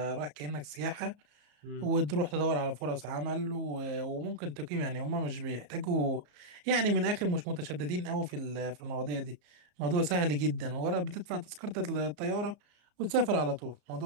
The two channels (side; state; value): left; late; 34 ms